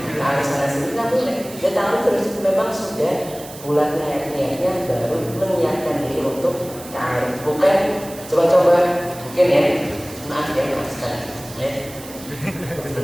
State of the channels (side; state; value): right; noise; hiss, 16 dB below the sound